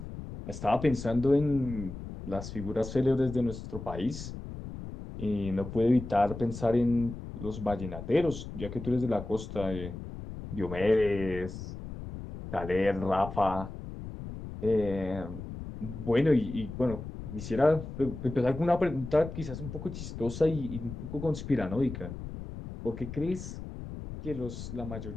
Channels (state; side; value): noise; left; rumble, 10 dB below the sound